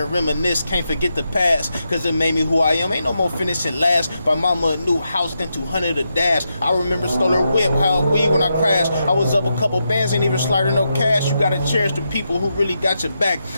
and reminisce, can't forget the past, cause it made me who I am. Ain't no more finishing last. Buy mama a new house, then 200 a dash. I remember stole her whip, how weed when I crashed. I was up a couple bands, ain't even sliding no cash. You gotta cherish the people who really got your back.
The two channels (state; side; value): inverted; both; correlation -0.85